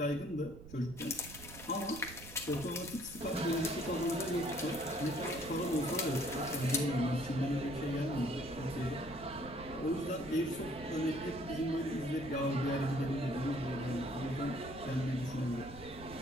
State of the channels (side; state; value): right; noise; rumble, 15 dB below the sound